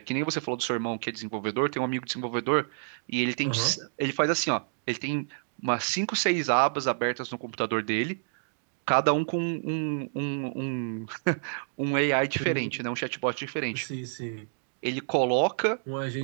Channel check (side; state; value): left; silent; digital silence